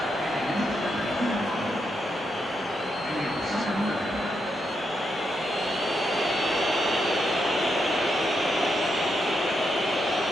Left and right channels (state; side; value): normal; both; correlation 0.82